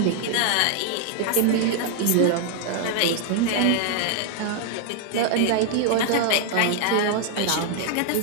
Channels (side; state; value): both; different; correlation 0.00